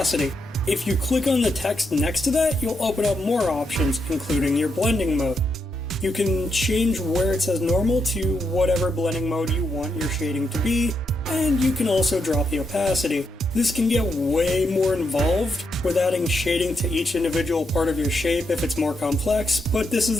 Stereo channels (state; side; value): normal; both; correlation 0.81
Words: If you click on the text next to that, you'll open up more options, including your blending mode. You can change where it says normal to whatever blending mode you want your shading to be, and you can also drop the opacity. This can get way more involved with adding shading to each individual part of your shape if it's more complex, but this